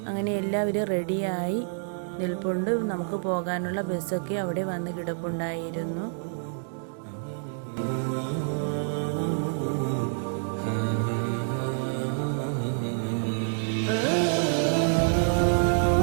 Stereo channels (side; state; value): left; silent; digital silence